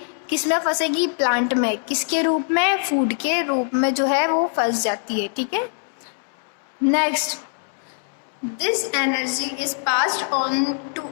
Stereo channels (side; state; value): right; silent; 64 dB below the other